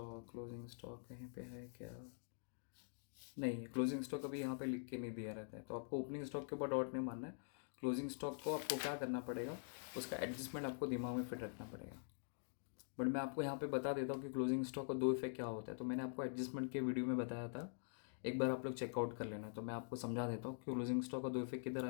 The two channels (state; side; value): silent; right; digital silence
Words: कहीं पे है क्या, नहीं है। क्लोजिंग स्टॉक अभी यहाँ पे लिख के नहीं दिया रहता है, तो आपको ओपनिंग स्टॉक के ऊपर डॉट नहीं मारना है। क्लोजिंग स्टॉक को आपको क्या करना पड़ेगा, उसका एडजस्टमेंट आपको दिमाग में फिट रखना पड़ेगा। बट मैं आपको यहाँ पे बता देता हूँ कि क्लोजिंग स्टॉक का दो इफेक्ट क्या होता है। तो मैंने आपको एडजस्टमेंट के वीडियो में बताया था, एक बार आप लोग चेकआउट कर लेना। तो मैं आपको समझा देता हूँ कि क्लोजिंग स्टॉक का दो इफेक्ट किधर